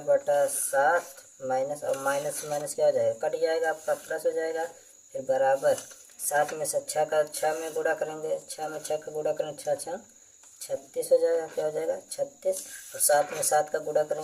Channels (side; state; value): both; identical; correlation 1.00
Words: माइनस, और माइनस माइनस क्या हो जाएगा, कट जाएगा आपका, प्लस हो जाएगा। फिर बराबर 7 में से 6 का 6 में गुणा करेंगे, 6 में 6 का गुणा करेंगे, 6 6 36 हो जाएगा। क्या हो जाएगा 36, और 7 में 7 का गुणा